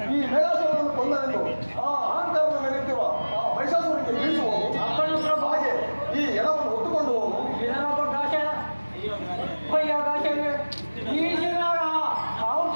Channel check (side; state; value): both; inverted; correlation -1.00